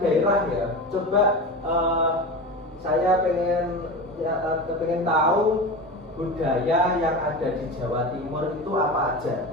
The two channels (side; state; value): both; normal; correlation 0.26